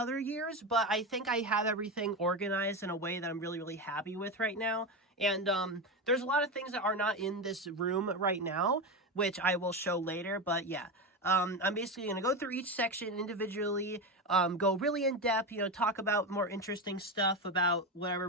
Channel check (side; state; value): both; normal; correlation 0.17